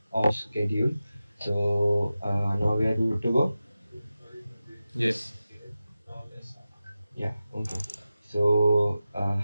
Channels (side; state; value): both; inverted; correlation -0.93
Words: off schedule. So now we are good to go. Yes. Now we can start. Yeah. Okay. So